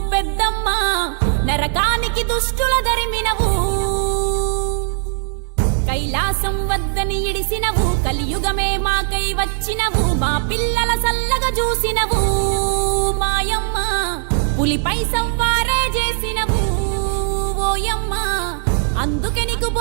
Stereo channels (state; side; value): silent; left; 64 dB below the other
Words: పెద్దమ్మ, నరకానికి దుష్టుల దరిమినవు. కైలాసం వద్దని ఇడిసినవు, కలియుగమే మాకై వచ్చినవు, మా పిల్లల సల్లగా చూసినవు మాయమ్మ, పులిపై సంవారే చేసినవు ఓయమ్మ, అందుకే నీకు